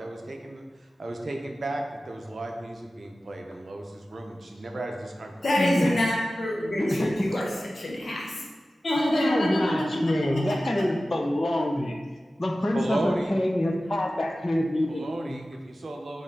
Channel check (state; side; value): normal; both; correlation 0.95